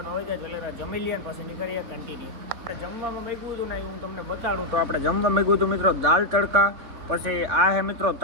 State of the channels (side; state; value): left; late; 4.2 ms